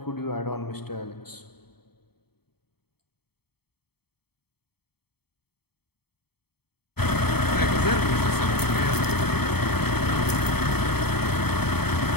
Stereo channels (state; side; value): late; right; 0.96 ms